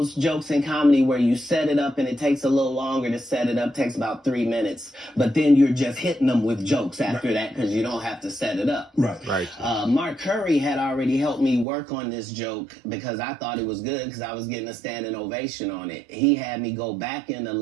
jokes in comedy where you set it up and it takes a little longer to set it up, takes about 3 minutes, but then you're just hitting them with jokes after that because you don't have to set it up. Right. Mark Curry had already helped me work on this joke because I thought it was good because I was getting a standing ovation on it. He had me go back in the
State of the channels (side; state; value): left; drops out; at 11.7 s